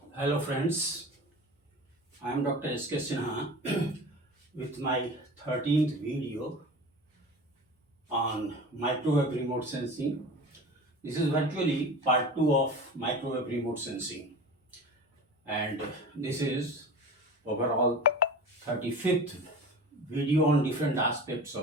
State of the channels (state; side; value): normal; both; correlation 0.35